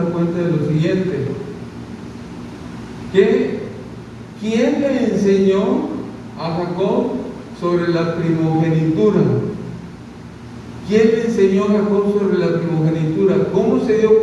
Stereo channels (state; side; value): identical; both; correlation 1.00